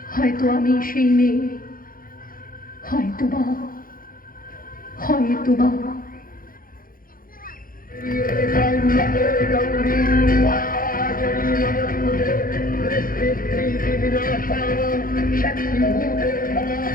হয়তো আমি সেই মেয়ে, হয়তোবা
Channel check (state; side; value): late; right; 0.41 ms